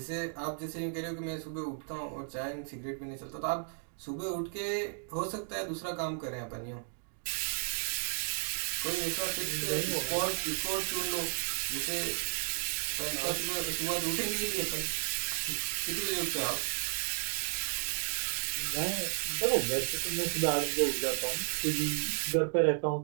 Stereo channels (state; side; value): silent; left; digital silence